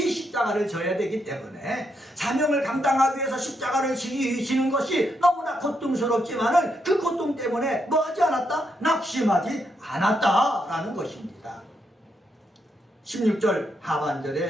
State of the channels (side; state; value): both; normal; correlation 0.80